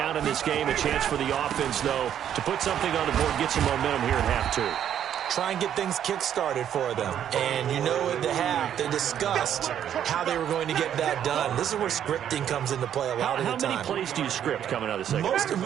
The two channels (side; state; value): left; quieter; 9.8 dB